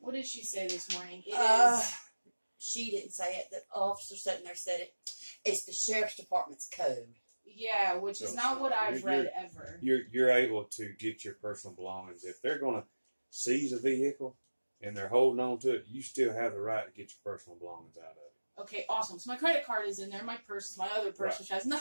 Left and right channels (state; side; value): inverted; both; correlation -1.00